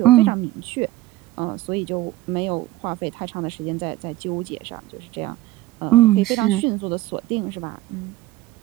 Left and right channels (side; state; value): left; quieter; 16.4 dB